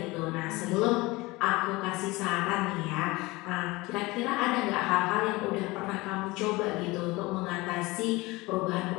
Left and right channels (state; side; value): quieter; right; 22.0 dB